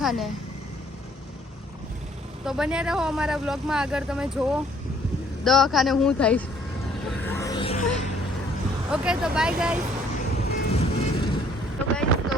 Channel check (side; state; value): both; normal; correlation 0.61